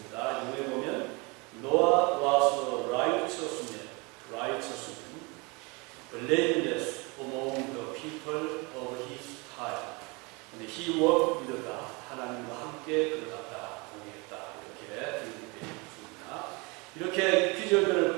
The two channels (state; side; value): quieter; left; 28.1 dB